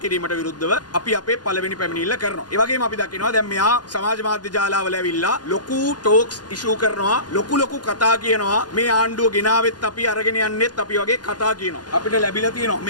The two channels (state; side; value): late; right; 0.70 ms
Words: කිරීමට විරුද්ධව අපි අපේ පළවෙනි පැමිණිල්ල කරනවා. ඒ වගේම අපි දකිනවා දැන් මෙහා සමාජ මාධ්‍ය ජාලාවල ඇවිල්ලා ලොකු ටෝක්ස් ඉෂුව කරනවා ලොකු කතා කියනවා මේ ආණ්ඩුව ගෙනාවෙත් අපි අරගෙන යන්නෙත් අපි වගේ කතා කියනවා. අපිට ලැබිලා තියෙනවා